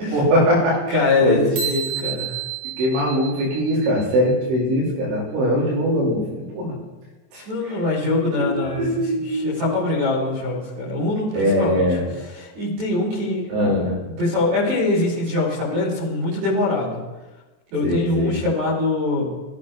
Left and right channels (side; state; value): left; late; 23 ms